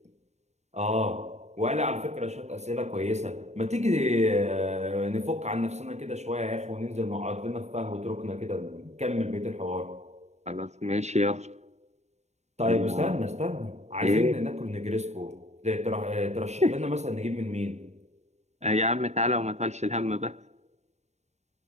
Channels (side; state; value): left; late; 0.32 ms